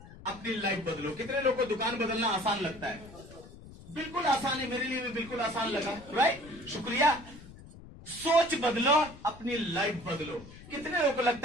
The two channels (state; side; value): noise; left; rumble, 18 dB below the sound